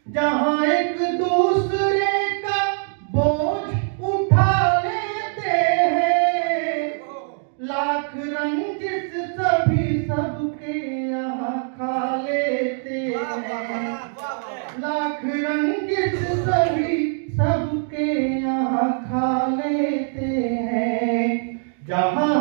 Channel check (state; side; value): silent; left; 64 dB below the other